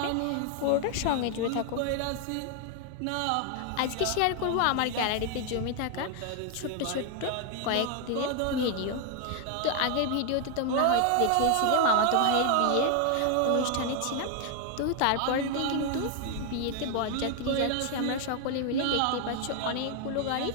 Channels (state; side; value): different; both; correlation 0.00